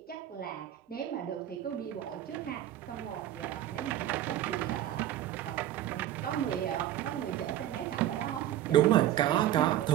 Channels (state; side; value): quieter; left; 12.3 dB